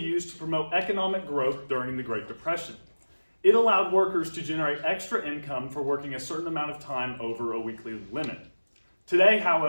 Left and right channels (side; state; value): both; inverted; correlation -1.00